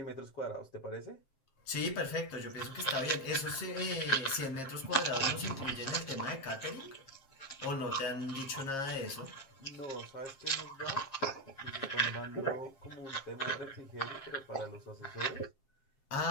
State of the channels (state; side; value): late; right; 7.4 ms